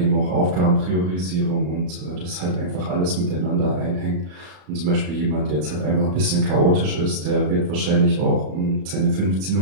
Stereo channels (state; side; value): late; left; 33 ms